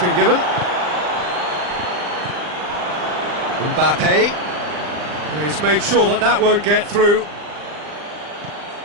given. Mbappe. He's made sure that that won't get through.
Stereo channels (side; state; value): left; late; 39 ms